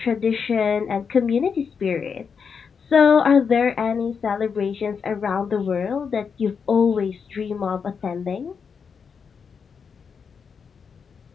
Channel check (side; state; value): right; quieter; 6.1 dB